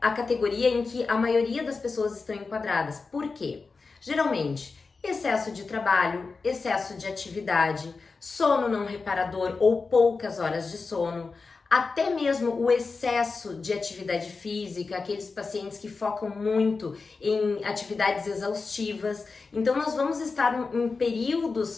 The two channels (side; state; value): right; quieter; 4.3 dB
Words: a categoria em que a maioria das pessoas estão enquadradas. Por quê? Geralmente, excesso de trabalho, excesso de atividade, sono não reparador ou poucas horas de sono, até mesmo o excesso de atividade física, aqueles pacientes que focam muito em atividades exaustivas. Então, nós vamos estar em